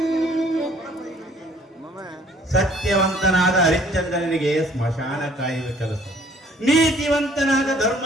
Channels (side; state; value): both; normal; correlation 0.58